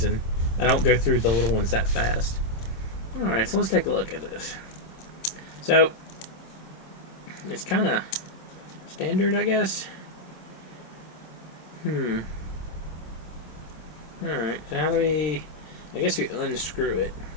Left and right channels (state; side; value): late; right; 26 ms